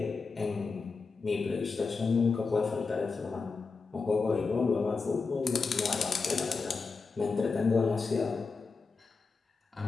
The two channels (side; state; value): right; quieter; 4.5 dB